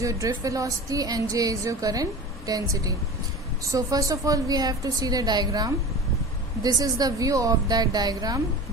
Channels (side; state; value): both; normal; correlation 0.34